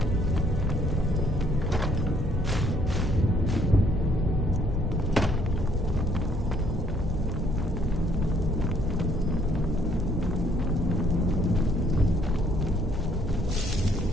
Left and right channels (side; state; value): both; normal; correlation 0.65